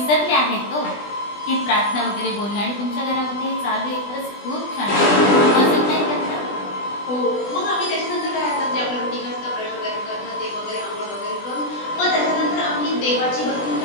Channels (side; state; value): right; late; 20 ms